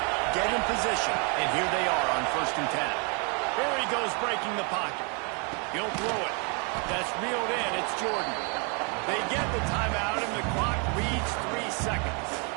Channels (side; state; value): left; quieter; 35.4 dB